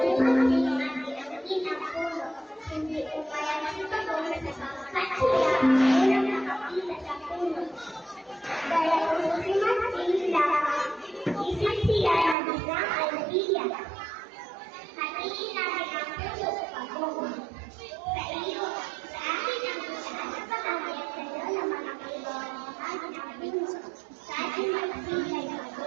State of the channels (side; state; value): left; drops out; at 12.4 s